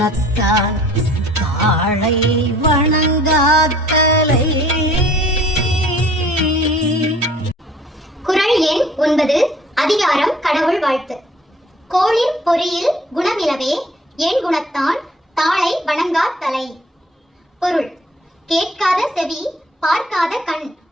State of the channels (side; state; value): both; normal; correlation 0.54